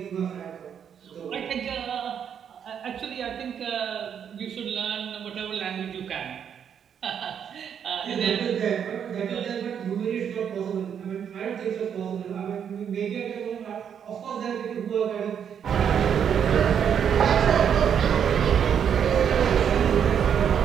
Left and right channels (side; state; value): left; quieter; 8.1 dB